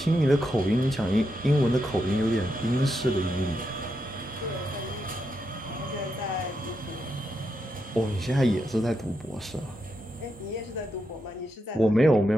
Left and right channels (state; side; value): normal; both; correlation 0.84